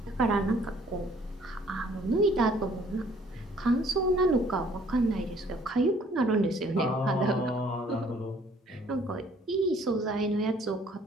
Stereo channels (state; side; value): normal; both; correlation 0.59